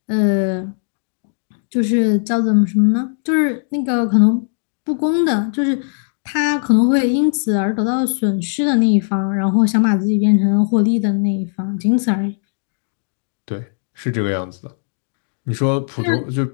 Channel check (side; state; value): right; silent; digital silence